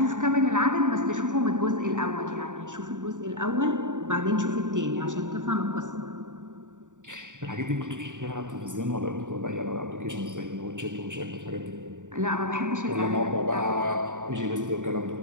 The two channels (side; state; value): left; late; 0.86 ms